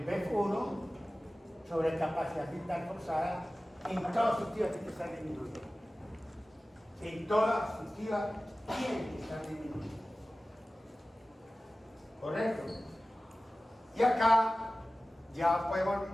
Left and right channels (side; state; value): both; normal; correlation 0.96